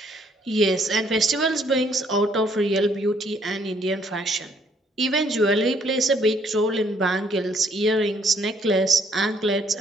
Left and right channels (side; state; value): both; normal; correlation 0.66